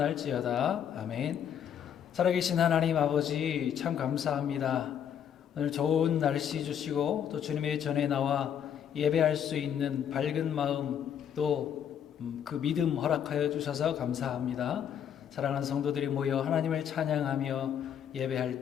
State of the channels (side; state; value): right; quieter; 8.8 dB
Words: 아멘. 살아계신 하나님 아버지, 참 감사합니다. 오늘 좋은 날씨 주시고 또 주님의 전에 나와 예배할 수 있는 밝은 마음, 또 그 믿음 허락하여 주셔서 감사합니다. 사랑하는 성도들이 모여 하나님을 찬양하며 예배할